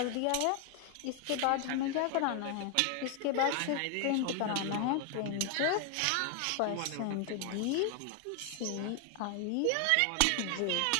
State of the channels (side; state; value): both; different; correlation 0.00